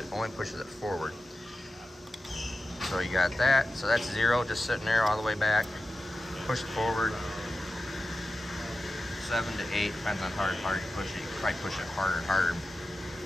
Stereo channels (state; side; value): normal; both; correlation 0.93